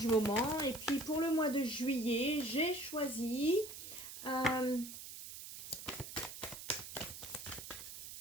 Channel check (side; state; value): right; noise; hiss, 11 dB below the sound